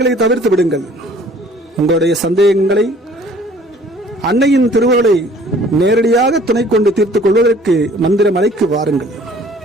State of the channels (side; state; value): both; normal; correlation 0.54